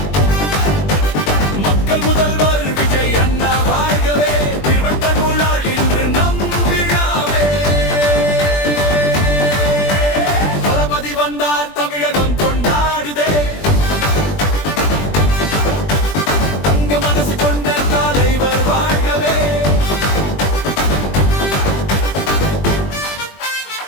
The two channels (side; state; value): right; late; 20 ms